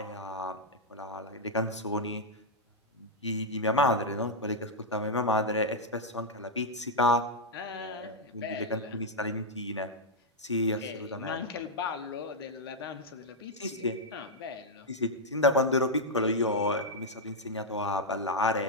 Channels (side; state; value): both; normal; correlation -0.02